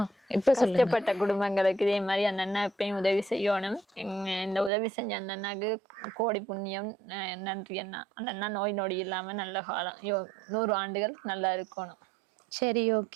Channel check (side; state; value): left; drops out; at 4.7 s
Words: இப்ப சொல்லுங்க. கஷ்டப்பட்ட குடும்பங்களுக்கு இதே மாதிரி அந்த அண்ணா எப்பயும் உதவி செய்யணும். இந்த உதவி செஞ்ச அந்த அண்ணாக்கு கோடி புண்ணியம். நன்றி அண்ணா. அந்த அண்ணா நோய் நொடி இல்லாம நல்ல காலம் 100 ஆண்டுகள் நல்லா இருக்கணும். சரி,